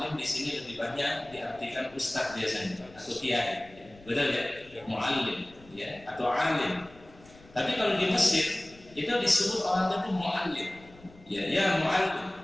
di sini lebih banyak diartikan ustaz biasanya atau kiai. Betul ya? Mu'allim, ya, atau alim. Tapi kalau di Mesir itu disebut orang itu mu'allim, ya mu'allim,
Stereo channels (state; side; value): noise; left; rumble, 24 dB below the sound